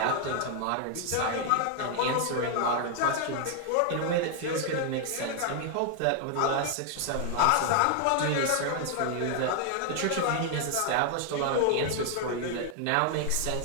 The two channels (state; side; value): different; both; correlation 0.00